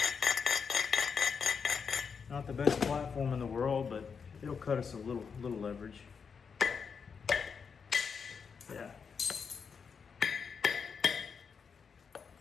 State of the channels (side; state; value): right; quieter; 6.0 dB